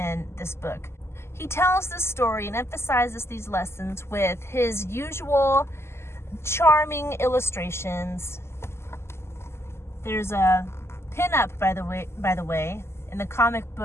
this book. He tells this story and emphasizes these lessons with his usual charming illustrations. There's a pin-up, by the way. In the comic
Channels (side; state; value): right; late; 0.12 ms